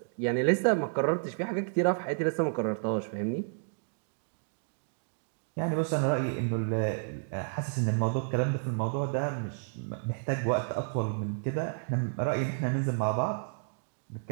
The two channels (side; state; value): left; silent; digital silence